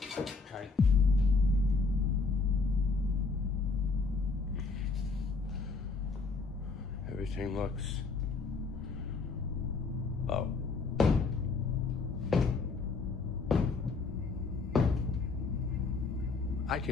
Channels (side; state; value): right; quieter; 4.2 dB